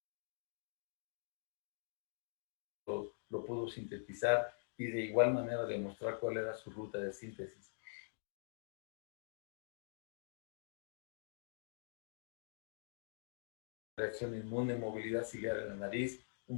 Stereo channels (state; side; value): silent; right; digital silence